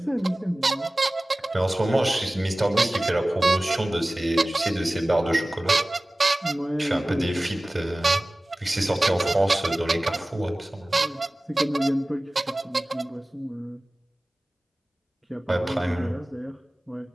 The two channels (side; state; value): both; normal; correlation 0.97